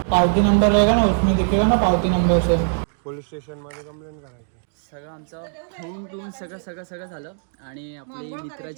पावती नंबर रहेगा ना, उसमें दिखेगा ना पावती नंबर से. पोलीस स्टेशन मध्ये कंप्लेंट करायची. सगळं आमचं होऊन टून सगळं झालं आणि आपली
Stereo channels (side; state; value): left; silent; digital silence